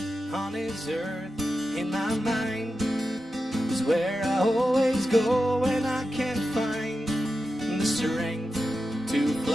on this earth. In my mind is where I always go when I can't find the strength to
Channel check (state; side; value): normal; both; correlation 0.91